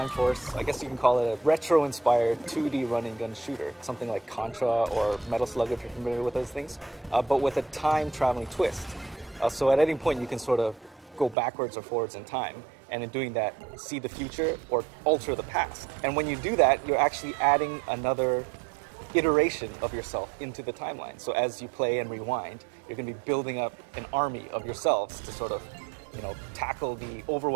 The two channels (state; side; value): drops out; left; at 11.4 s